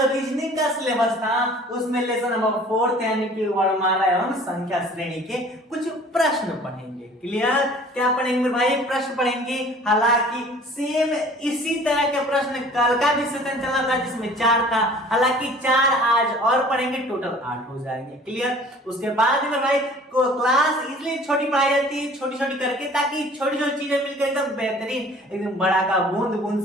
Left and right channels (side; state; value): both; normal; correlation 0.49